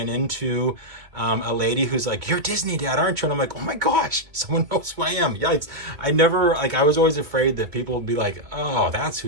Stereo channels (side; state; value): left; late; 2.2 ms